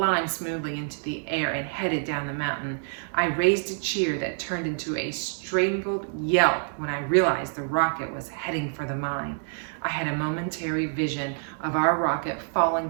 smoothly into the air and headed down the mountain. I raised a cheer that turned into a strangled yelp when I realized the rocket was heading for the mine. I had a momentary vision of our rocket falling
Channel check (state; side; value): silent; left; digital silence